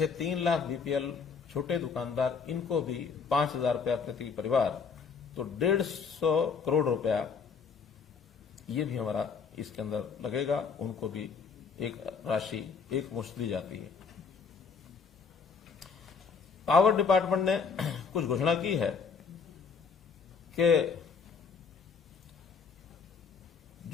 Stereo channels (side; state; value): right; quieter; 5.6 dB